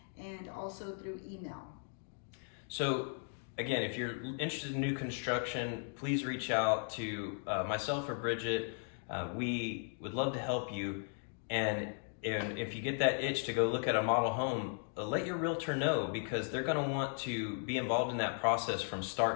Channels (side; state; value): right; silent; 53 dB below the other